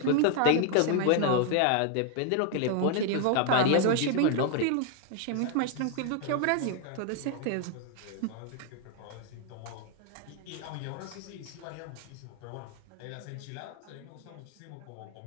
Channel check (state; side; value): different; both; correlation 0.00